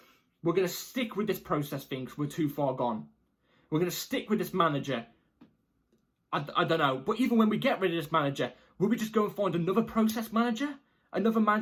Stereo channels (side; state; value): both; identical; correlation 1.00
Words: we're going to stick with this process thing because we're too far gone. We're going to stick with this manager. I don't know. But even when we get rid of this manager, will we just go and find another process manager? Another